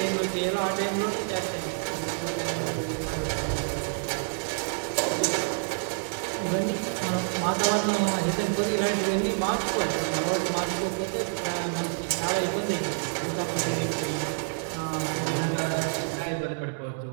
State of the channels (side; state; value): left; silent; digital silence